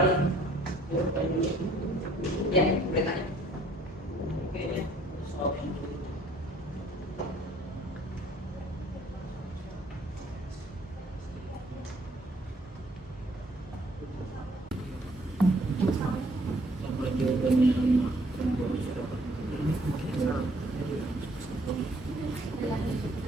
ya boleh tanya. Oke soal yang dulu.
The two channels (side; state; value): both; normal; correlation 0.61